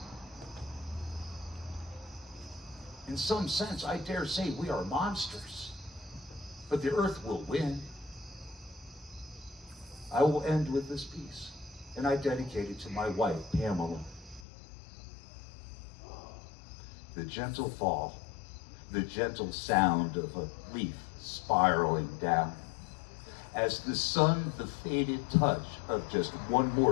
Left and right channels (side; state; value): right; drops out; at 14.5 s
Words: In some sense, I dare say we are monsters, but the earth will win. I will end with this piece, and I dedicate it to my wife, Pamela. The gentle fall, the gentle sound of a leaf spiraling down. As the sun, the faded touch of just one